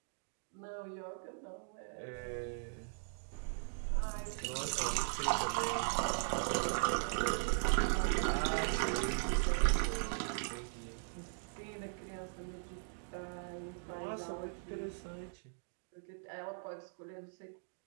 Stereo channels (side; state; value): left; silent; digital silence